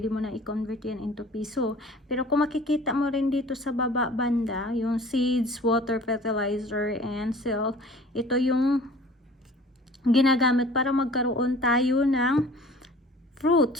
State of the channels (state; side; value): normal; both; correlation 0.47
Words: mo na i-convert yan into piso. Pero kung makikita mo rin dito sa baba banda, yung seeds, water, fertilizer, and sell, ito yung ginagamit para magkaroon tayo ng